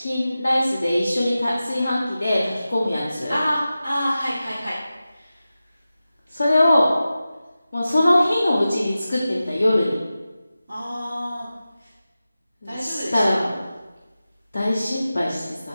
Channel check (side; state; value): both; inverted; correlation -0.94